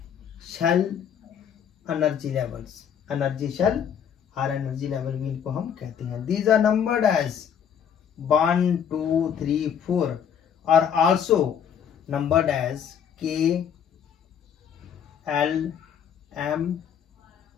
shell energy levels. Energy shell और energy level भी इनको हम कहते हैं. These are numbered as 1, 2, 3, 4 are also numbered as K, L, M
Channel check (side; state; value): right; quieter; 8.2 dB